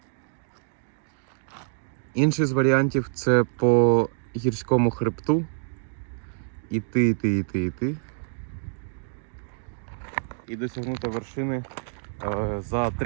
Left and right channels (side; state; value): left; silent; digital silence